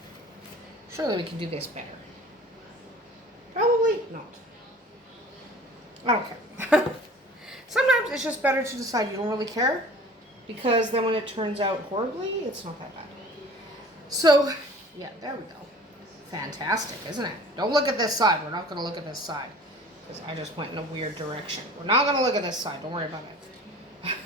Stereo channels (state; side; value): normal; both; correlation 0.45